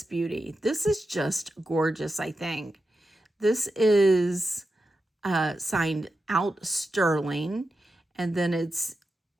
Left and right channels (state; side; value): normal; both; correlation 0.89